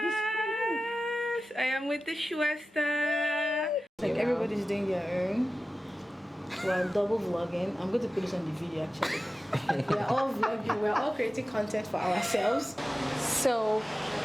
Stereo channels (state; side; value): normal; both; correlation 0.95